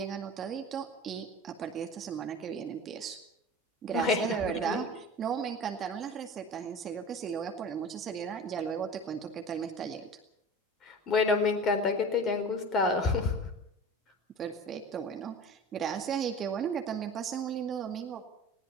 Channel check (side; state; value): both; normal; correlation 0.36